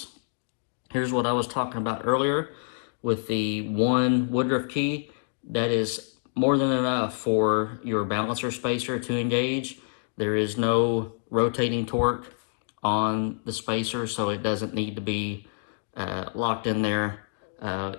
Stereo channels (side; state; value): right; silent; digital silence